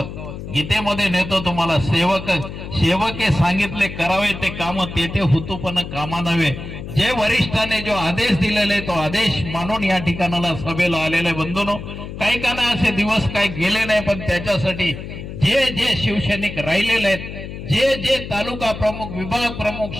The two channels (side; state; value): left; noise; hum, 10 dB below the sound